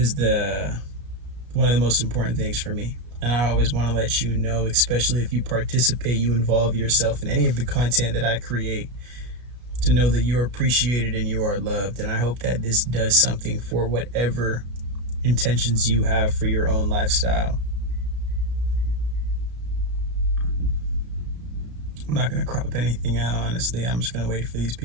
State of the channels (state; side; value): late; left; 33 ms